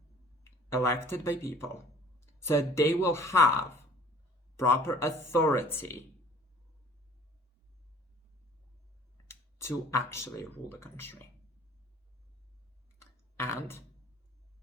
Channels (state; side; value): normal; both; correlation 0.51